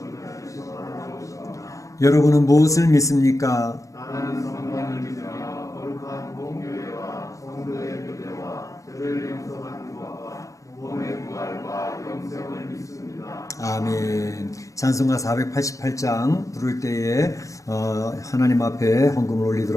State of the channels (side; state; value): right; late; 0.16 ms